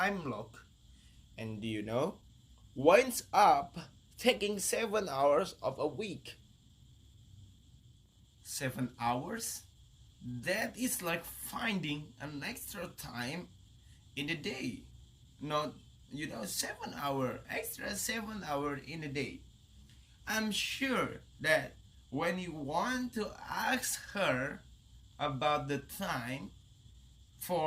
log. And do you know? Winds up taking 7 hours of a week. 7 hours? That is like finding an extra time in the day. Not 7 hour extra, 7 hour in a day. I'm sure that when you want to ask her about the time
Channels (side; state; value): both; identical; correlation 1.00